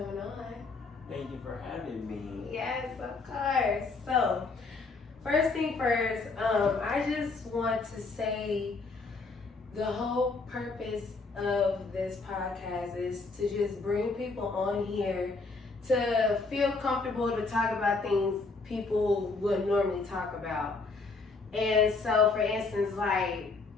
on. Thank you for having me. Yes, of course. So, first thing first, I just want to say the whole purpose of this podcast is to just bring people on here to feel comfortable to talk about things people would normally talk about. And so, for instance, like,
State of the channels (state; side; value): quieter; right; 3.9 dB